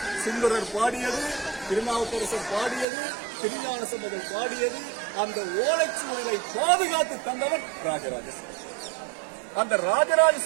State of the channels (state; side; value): drops out; left; at 2.9 s